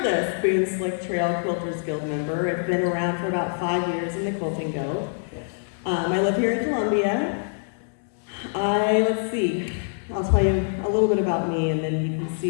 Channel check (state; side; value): silent; right; digital silence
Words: Boone Slick Trail Quilters Guild member. I've been around for about 5 years in the Quilting Guild. I live here in Columbia. Let's see, I'll tell you a little bit about me and then you can